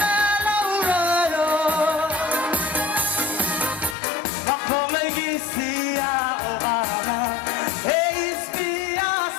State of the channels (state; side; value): drops out; right; at 4.0 s